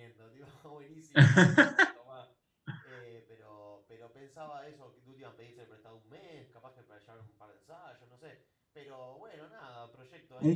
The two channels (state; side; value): identical; both; correlation 1.00